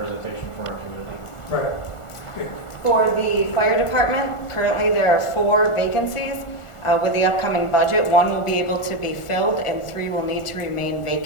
from our community. Right. For the fire department, currently there are 4 vacancies. With the upcoming budget, 1 will be able to be filled and 3 will need to remain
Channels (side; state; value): right; late; 1.4 ms